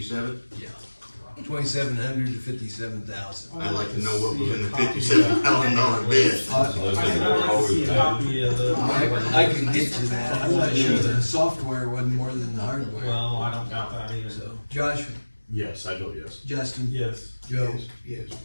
Yeah, 2,700 to 57,000. I'd like to know what was in the $57,000 bid. I can get you that, I'm not sure the software wasn't more than the hardware. Well, I don't doubt that either. So, Josh, Yes, I vote yes. Justin, Yes. Joe, Yes.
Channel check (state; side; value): inverted; both; correlation -1.00